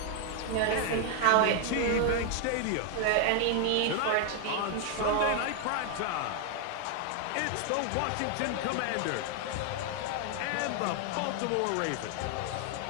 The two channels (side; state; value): both; different; correlation 0.00